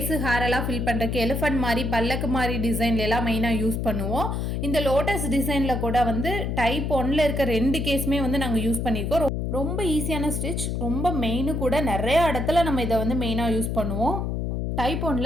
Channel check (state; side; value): noise; left; hum, 1 dB below the sound